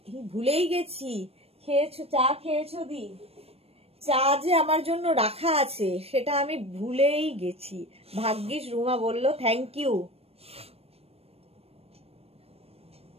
ভুলেই গেছি, খেয়েছো? চা খেয়েছো দি? চা যে আমার জন্য রাখা আছে সেটা আমি ভুলেই গেছি, ভাগ্যিস রুমা বললো, থ্যাংক ইউ।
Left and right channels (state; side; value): late; left; 0.29 ms